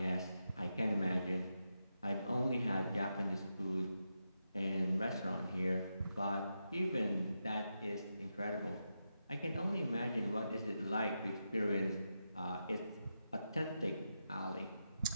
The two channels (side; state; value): both; inverted; correlation -0.87